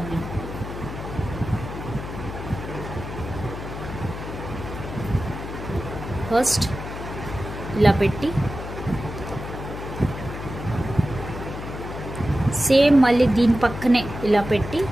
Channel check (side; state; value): left; noise; hum, 8 dB below the sound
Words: నేను. ఫస్ట్ ఇలా పెట్టి సేమ్ మళ్ళీ దీని పక్కనే ఇలా పెట్టి